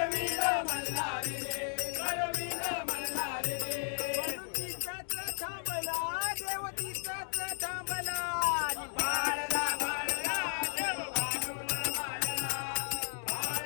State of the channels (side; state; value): right; silent; digital silence